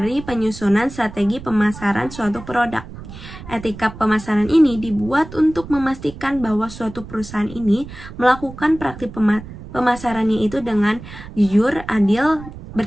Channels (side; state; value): right; noise; rumble, 14 dB below the sound